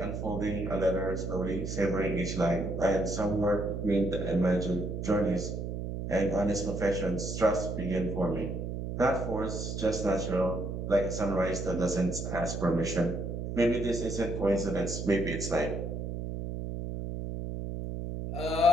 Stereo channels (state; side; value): noise; right; hum, 4 dB below the sound